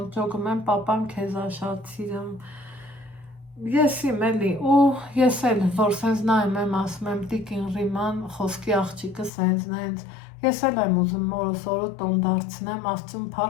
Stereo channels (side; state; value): right; drops out; at 9.3 s